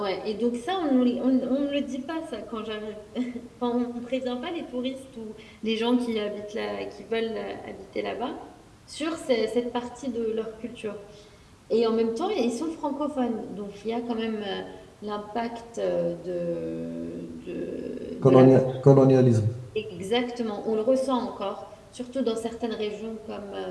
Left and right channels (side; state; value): both; identical; correlation 1.00